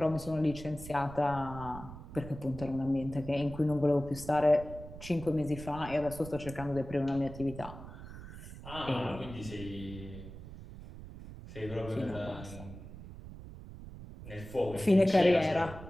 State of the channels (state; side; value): noise; right; rumble, 13 dB below the sound